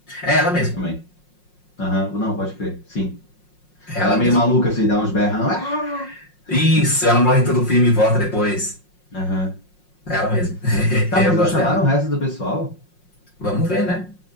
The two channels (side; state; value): right; late; 5.5 ms